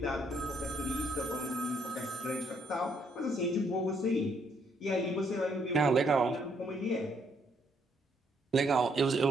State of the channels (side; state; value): both; normal; correlation 0.70